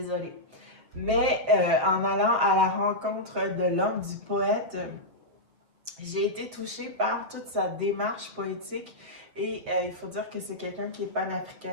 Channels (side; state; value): left; late; 7.2 ms